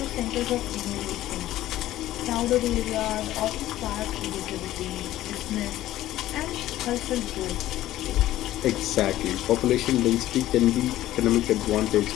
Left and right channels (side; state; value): right; quieter; 14.4 dB